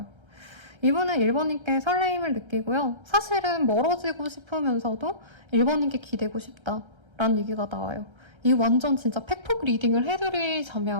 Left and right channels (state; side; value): late; left; 1.3 ms